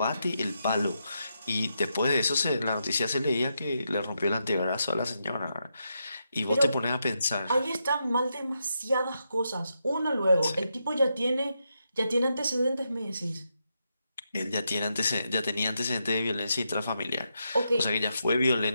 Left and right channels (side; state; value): both; inverted; correlation -0.83